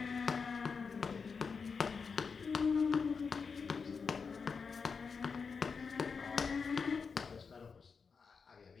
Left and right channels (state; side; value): quieter; right; 5.4 dB